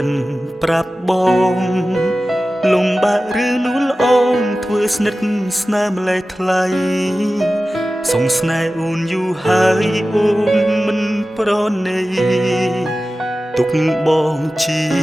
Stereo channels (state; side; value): normal; both; correlation 0.95